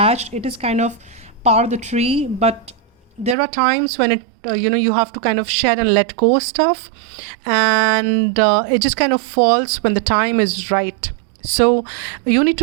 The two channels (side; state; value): left; drops out; at 3.4 s